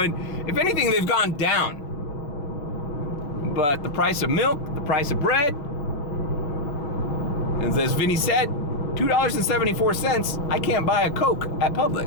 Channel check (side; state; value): right; late; 6.7 ms